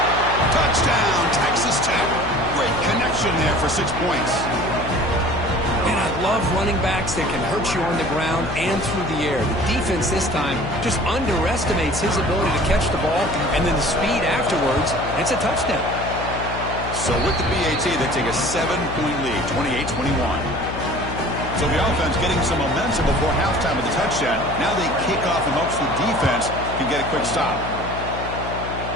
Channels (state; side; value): noise; left; hum, 8 dB below the sound